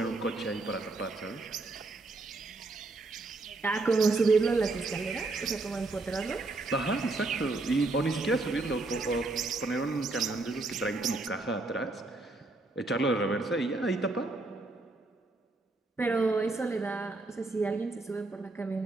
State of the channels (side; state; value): left; quieter; 3.3 dB